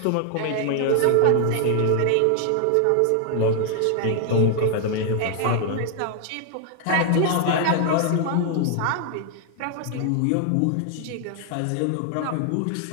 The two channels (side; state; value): both; different; correlation 0.00